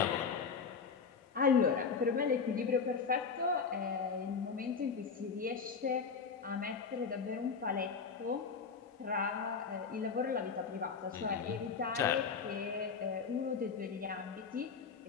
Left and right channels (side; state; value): right; quieter; 5.6 dB